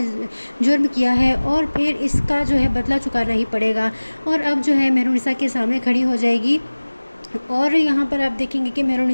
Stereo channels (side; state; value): both; inverted; correlation -1.00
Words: जुर्म किया है और फिर इसका जो है बदला चुकाना ही पड़ेगा। और अब जो है मेहरुनिसा के सामने खड़ी हो जाएगी और यहाँ पर आप देखेंगे कि